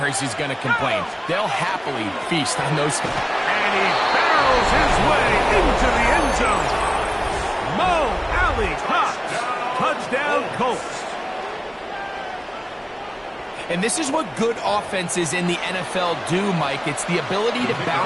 is going to complain. They'll happily feast on those. And he barrels his way into the end zone. Mo Alley Cox. Touchdown, Colts. And this is what good offenses in the NFL do, Mike. It's the ability to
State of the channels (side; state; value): both; identical; correlation 1.00